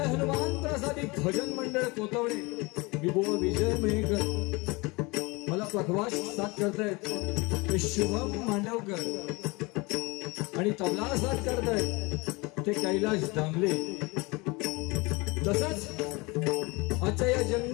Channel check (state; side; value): quieter; right; 25.5 dB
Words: हनुमान प्रसादी भजन मंडळ कोतवडे मी बुवा विजय मेहकर, मला पखवाज साथ करतायत ते शुभम मांडवकर आणि तबला साथ करतायत ते कैलाश दामले. तसंच आजच्या या